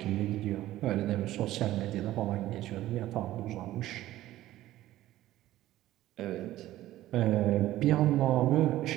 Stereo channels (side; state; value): left; quieter; 14.8 dB